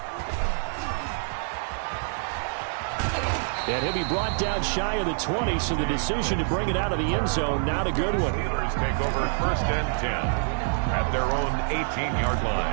And he'll be brought down shy of the 20, so the decision to bring it out of the end zone, not a good one. Steelers take over 1st and 10 at their own 18-yard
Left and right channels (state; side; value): silent; left; digital silence